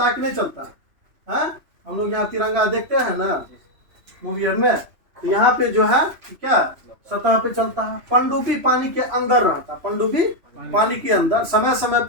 कि नहीं चलता है? हम लोग यहाँ तिरंगा देखते हैं ना मूवियर में, तो यहाँ पे जो है क्या सतह पे चलता है। पनडुब्बी पानी के अंदर रहता है, पनडुब्बी पानी के अंदर। समय समय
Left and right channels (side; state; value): left; late; 3.0 ms